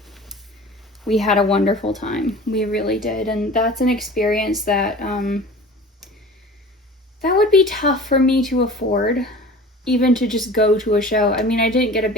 We had a wonderful time. We really did. And that's an experience that that would be tough for me to afford, even to just go to a show. I mean, I didn't get a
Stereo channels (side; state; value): both; normal; correlation 0.40